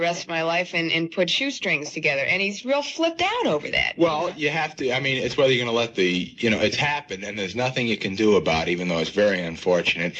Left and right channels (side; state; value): both; identical; correlation 1.00